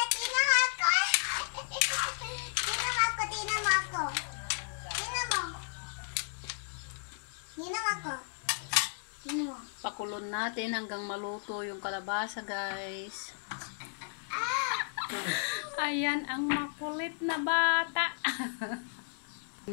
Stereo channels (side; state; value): right; silent; digital silence